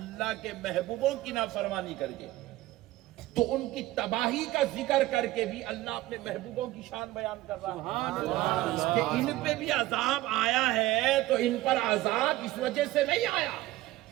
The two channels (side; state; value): left; quieter; 16.9 dB